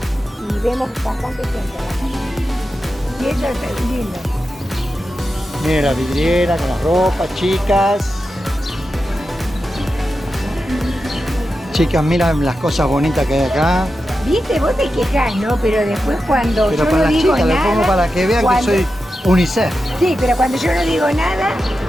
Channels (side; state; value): both; normal; correlation 0.90